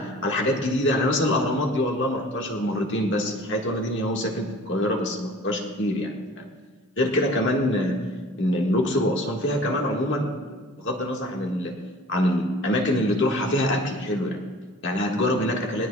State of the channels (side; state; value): both; normal; correlation 0.46